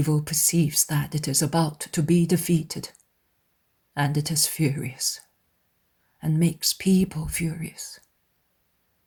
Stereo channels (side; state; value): both; identical; correlation 1.00